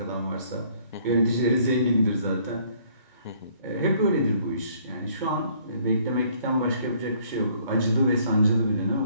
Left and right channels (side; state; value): both; inverted; correlation -0.62